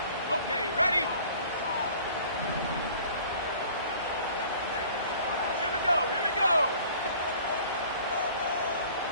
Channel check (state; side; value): inverted; both; correlation -0.50